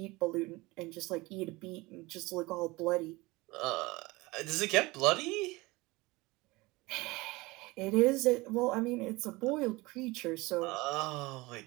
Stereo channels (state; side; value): quieter; left; 22.1 dB